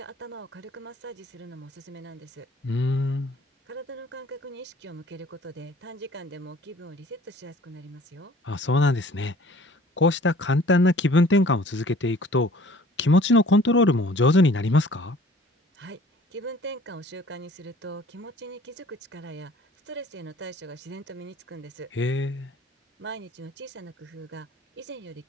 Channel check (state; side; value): normal; both; correlation 0.52